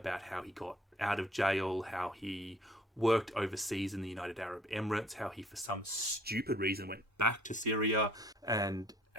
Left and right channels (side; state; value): both; normal; correlation 0.58